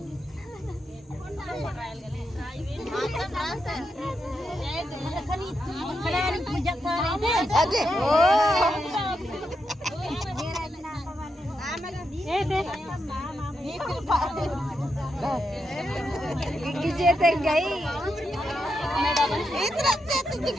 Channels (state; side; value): normal; both; correlation 0.84